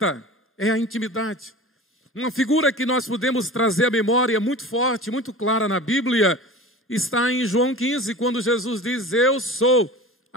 é a intimidade. Uma figura que nós podemos trazer à memória muito forte, muito clara na Bíblia, está em João 15, quando Jesus diz, eu sou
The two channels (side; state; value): both; normal; correlation 0.36